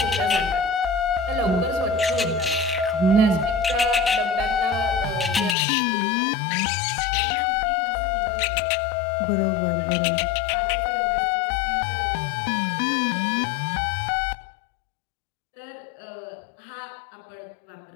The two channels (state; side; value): drops out; right; at 5.6 s